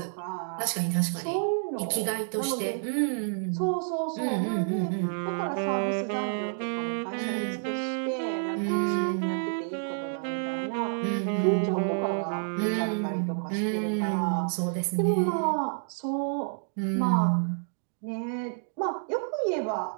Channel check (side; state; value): left; silent; digital silence